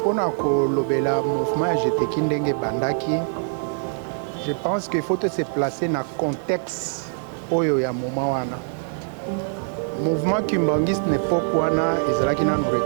Pona ko lobela mouvement à GTK ndenge bandaki, je pense qu'il faut se placer dans le contexte oyo ya moment wana. Mouvement kimbangiste n'époque wana ezalaki na nous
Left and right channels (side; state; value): left; silent; digital silence